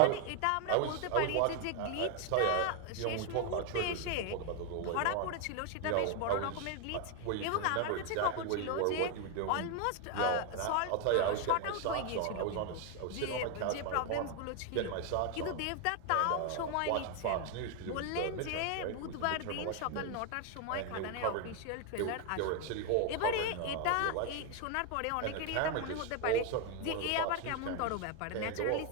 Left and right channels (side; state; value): both; different; correlation 0.01